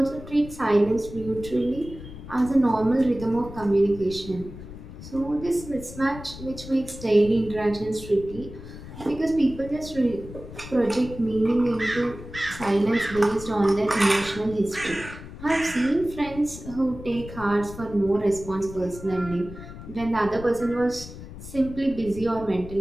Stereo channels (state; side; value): noise; left; rumble, 13 dB below the sound